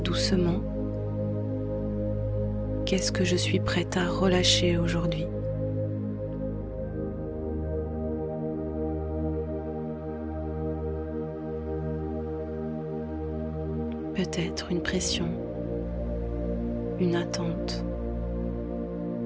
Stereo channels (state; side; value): identical; both; correlation 1.00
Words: doucement, qu'est-ce que je suis prête à relâcher aujourd'hui ? Peut-être une pression, une attente,